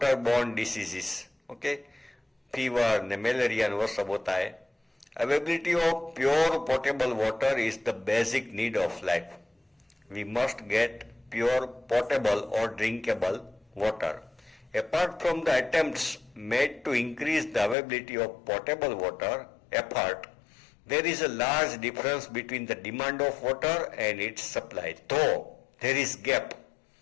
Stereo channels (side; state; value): right; drops out; at 17.8 s